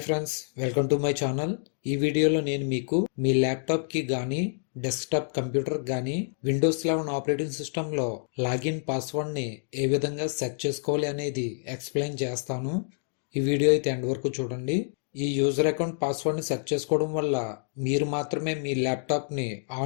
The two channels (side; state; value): right; silent; digital silence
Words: friends, welcome to my channel. ఈ వీడియోలో నేను మీకు మీ ల్యాప్టాప్కి కానీ డెస్క్టాప్ కంప్యూటర్ కానీ విండోస్ 11 ఆపరేటింగ్ సిస్టంలో లాగిన్ పాస్వర్డ్ని ఏ విధంగా సెట్ చేసుకోవాలి అనేది ఎక్స్ప్లెయిన్ చేస్తాను. ఈ వీడియో అయితే ఎండ్ వరకు చూడండి. ఈ యూజర్ అకౌంట్ పాస్వర్డ్ని సెట్ చేసుకోవడం వల్ల మీరు మాత్రమే మీ ల్యాప్టాప్ని